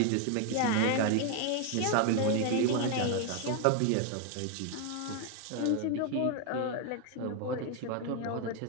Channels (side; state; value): both; different; correlation 0.01